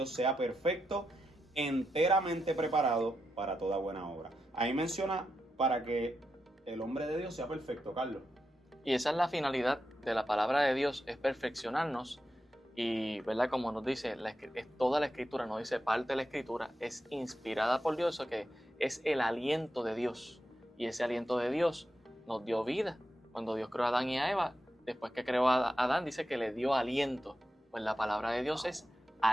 sea perfecto, enteramente preparado para toda buena obra. Ahí menciona para que el hombre de Dios sea perfecto, Carlos. Y esa es la finalidad de la palabra de Dios, es perfeccionarnos. Y, ¿verdad? Como nos dice, es toda la escritura, no dice parte de la escritura, es inspirada por Dios, eso que es el aliento de Dios. Y ese aliento de Dios nos dio vida. Cuando Dios creó a Adán y a Eva, después que creó a Adán, dice que le dio aliento. Pues la palabra de Dios es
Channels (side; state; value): both; normal; correlation 0.87